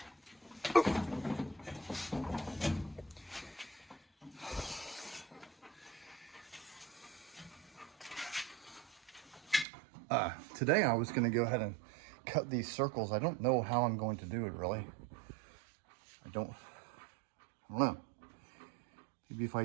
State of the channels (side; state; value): left; drops out; at 9.7 s